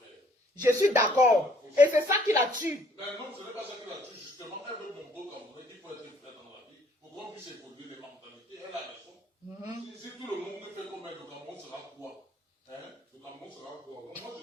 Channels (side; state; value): both; normal; correlation 0.61